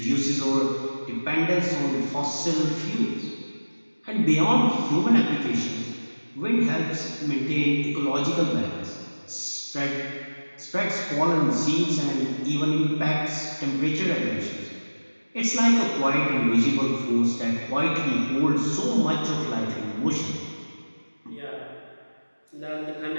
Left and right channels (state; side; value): inverted; both; correlation -1.00